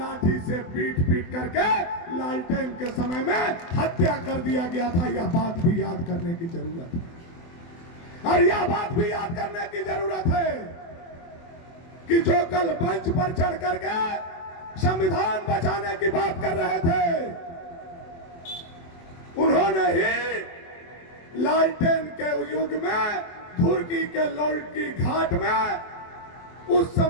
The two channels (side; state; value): right; late; 24 ms